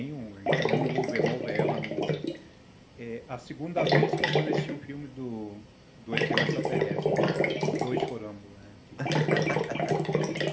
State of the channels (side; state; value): both; identical; correlation 1.00